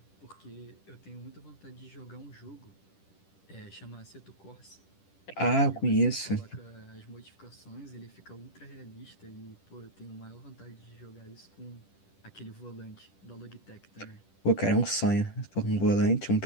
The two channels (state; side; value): late; right; 10 ms